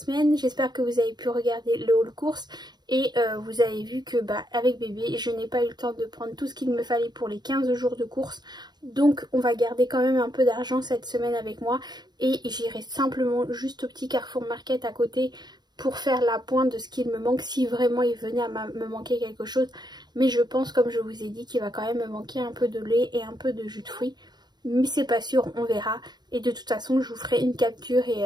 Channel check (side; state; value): left; late; 0.20 ms